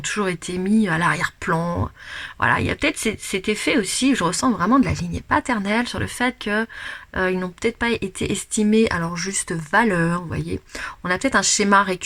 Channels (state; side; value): identical; both; correlation 1.00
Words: été mis à l'arrière-plan. Voilà, il y a peut-être cet effet aussi, je ressens vraiment de la lignée paternelle sur le fait que ils n'ont peut-être pas été estimés à leur juste valeur, vous voyez. On a peut-être un schéma